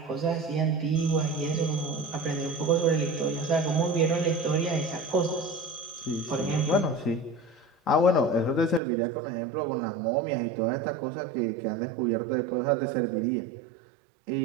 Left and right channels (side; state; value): left; drops out; at 8.8 s